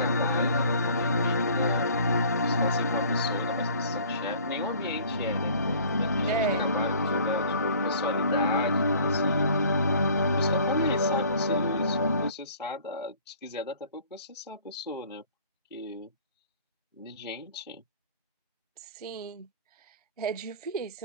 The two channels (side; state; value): both; inverted; correlation -0.51